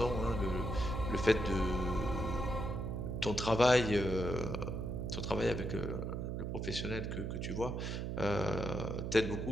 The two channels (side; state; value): right; noise; hum, 3 dB below the sound